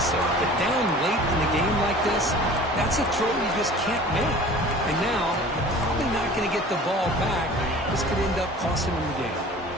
but down late in the game like this, that's a throw you just can't make. And now, you're probably not going to get the ball back. This could end up costing them the game.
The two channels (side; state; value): both; normal; correlation 0.44